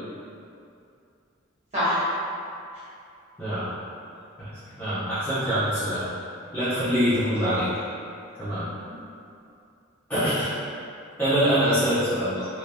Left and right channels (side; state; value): both; normal; correlation 0.31